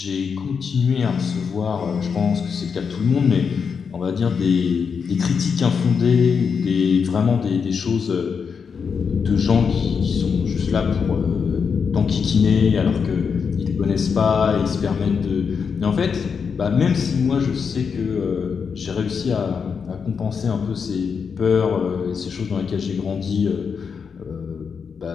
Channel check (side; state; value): right; quieter; 6.1 dB